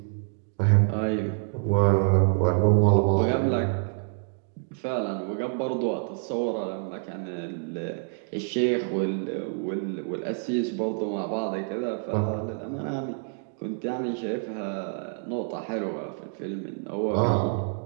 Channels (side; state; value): left; silent; 60 dB below the other